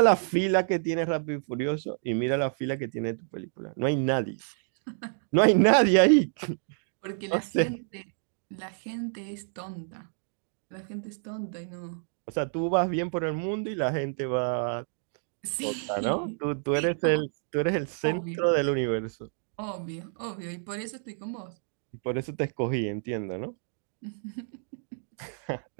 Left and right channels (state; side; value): silent; left; digital silence